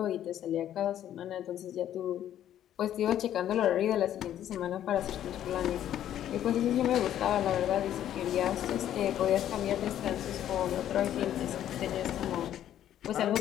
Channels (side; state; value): right; quieter; 11.2 dB